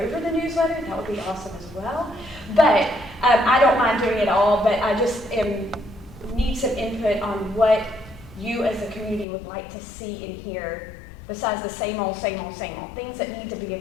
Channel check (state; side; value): drops out; right; at 9.2 s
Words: the newsletter, that would be awesome as well. But I don't mind doing it all, but I just need some input on what you as a community would like to see in here, besides the same old, things that need to be